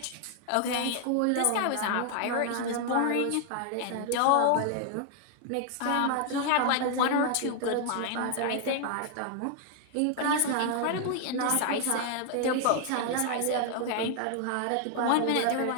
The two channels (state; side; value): different; both; correlation 0.00